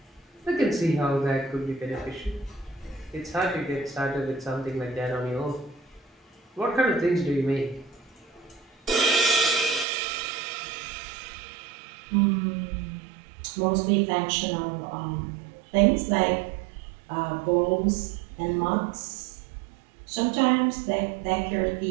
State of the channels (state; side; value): drops out; left; at 9.9 s